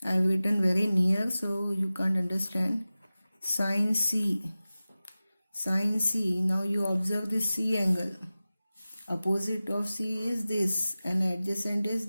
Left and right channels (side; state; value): both; inverted; correlation -0.96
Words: I have written very near so you can't understand. Sin C, now you observe this C angle. Opposite of C is this and adjacent is